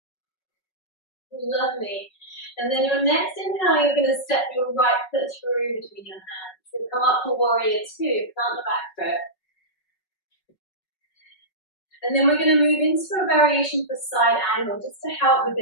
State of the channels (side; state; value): right; late; 5.4 ms